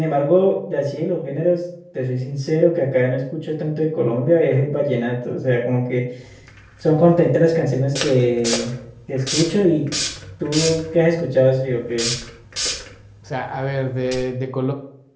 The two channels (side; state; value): both; identical; correlation 1.00